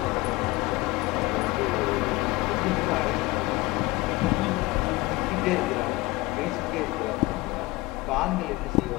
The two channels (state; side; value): quieter; right; 21.1 dB